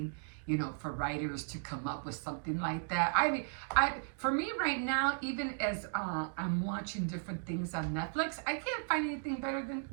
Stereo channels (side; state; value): left; silent; digital silence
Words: for writers to come up with something like that. For me right now, even as I'm watching different things on Netflix, I can't find anything better than